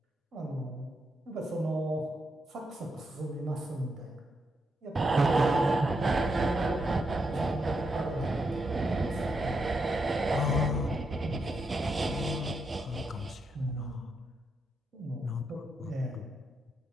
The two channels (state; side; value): normal; both; correlation 0.82